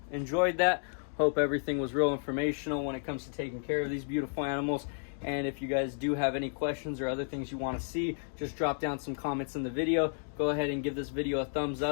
enjoyed that. Hope everything was real informational when it comes to taking care of these beautiful animals. And if you guys do have any questions or other things you want to see, just drop down some comments in the video. Go ahead and give this video a thumbs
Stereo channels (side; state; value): right; silent; digital silence